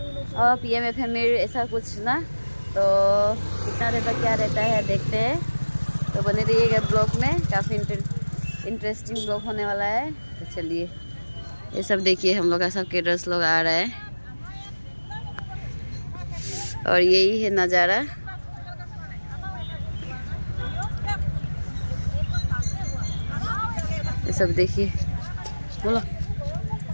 और PMFM ऐसा कुछ ना। तो कितना देर तक क्या रहता है देखते हैं। तो बने रहिएगा ब्लॉग में, काफ़ी इंटरेस्टिंग ब्लॉग होने वाला है। तो चलिए ये सब देखिए, हम लोग का सब केटर्स लोग आ रहा है और यही है नज़ारा। ये सब देखिए, बोलो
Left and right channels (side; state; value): both; inverted; correlation -1.00